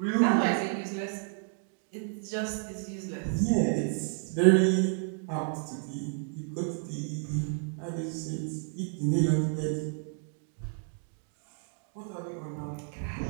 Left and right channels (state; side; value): silent; left; 57 dB below the other